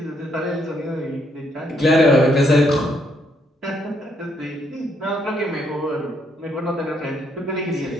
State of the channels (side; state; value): both; normal; correlation 0.73